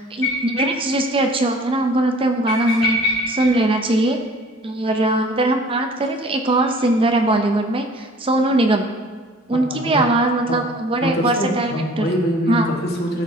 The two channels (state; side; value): normal; both; correlation 0.50